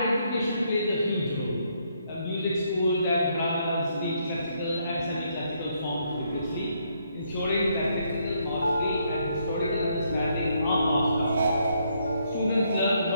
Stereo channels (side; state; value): both; inverted; correlation -0.73